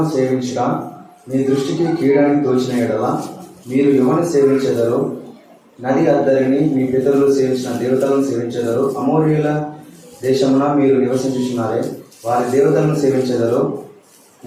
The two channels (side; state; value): both; identical; correlation 1.00